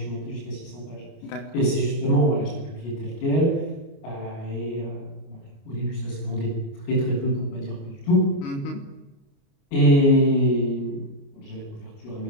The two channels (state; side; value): late; right; 29 ms